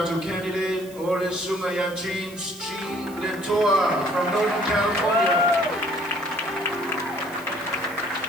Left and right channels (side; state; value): right; noise; hiss, 20 dB below the sound